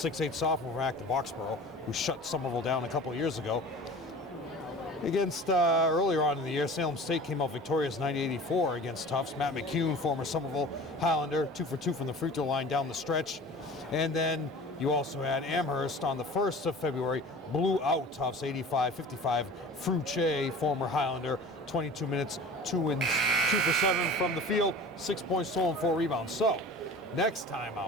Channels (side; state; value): both; normal; correlation 0.40